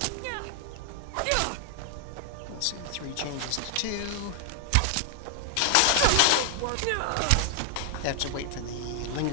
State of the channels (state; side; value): different; both; correlation 0.00